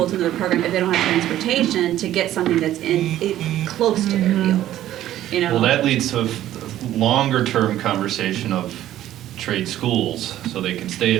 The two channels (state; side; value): quieter; left; 13.0 dB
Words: to another program, if they don't have transportation, to get something that's close to their field, you know? Well, that leads to a longer-term conversation of trade schools, so they can stay